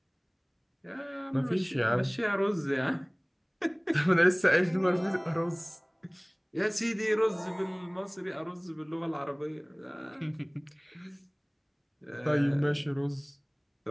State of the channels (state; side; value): identical; both; correlation 1.00